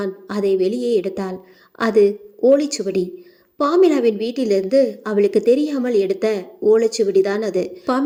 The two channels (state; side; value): identical; both; correlation 1.00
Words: அதை வெளியே எடுத்தாள். அது ஓலைச்சுவடி. பாமிலாவின் வீட்டிலிருந்து அவளுக்கு தெரியாமல் எடுத்த ஓலைச்சுவடிதான் அது.